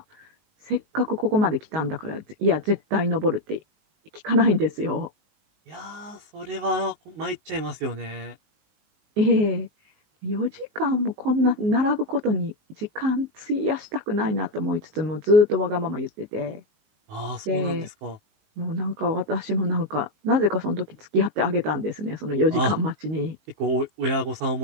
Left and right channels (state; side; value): late; left; 19 ms